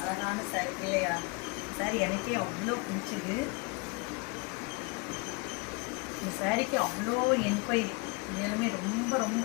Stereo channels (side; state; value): right; quieter; 29.1 dB